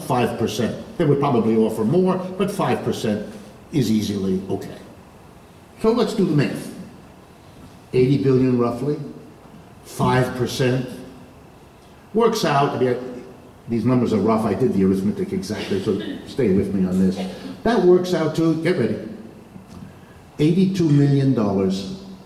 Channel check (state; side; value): identical; both; correlation 1.00